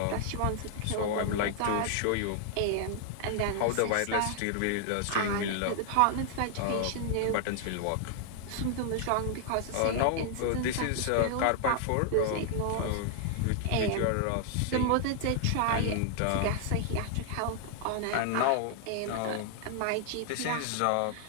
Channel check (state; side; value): different; both; correlation 0.00